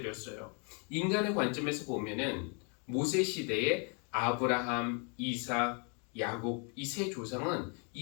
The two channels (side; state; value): right; quieter; 36.9 dB